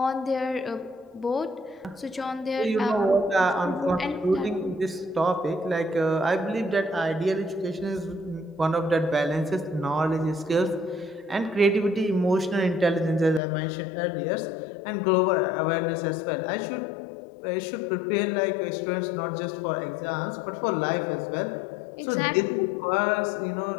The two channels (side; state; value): right; drops out; at 13.4 s